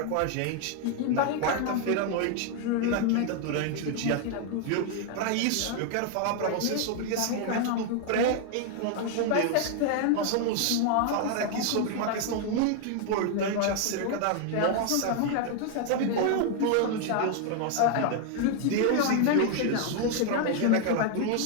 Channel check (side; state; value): both; different; correlation 0.00